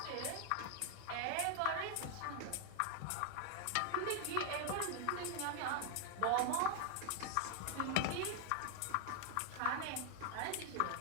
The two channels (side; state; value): both; different; correlation 0.00